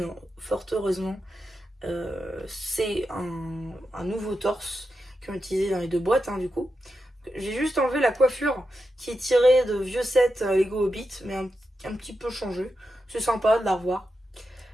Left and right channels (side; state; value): both; normal; correlation 0.88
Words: fort heureusement, c'est un nouveau torse qu'ils ont utilisé dans les deux boîtes, du coup. J'ai juste enlevé la coiffure qui est tirée de vieux sets Lego Hobbit, mais un petit peu changé. C'est sympa de la revoir.